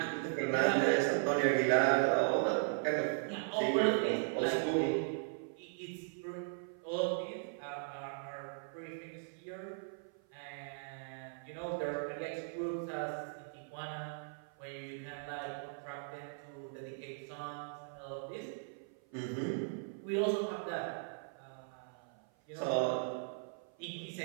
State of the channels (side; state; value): left; silent; 52 dB below the other